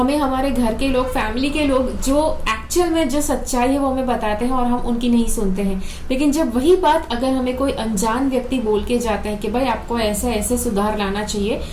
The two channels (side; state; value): both; identical; correlation 1.00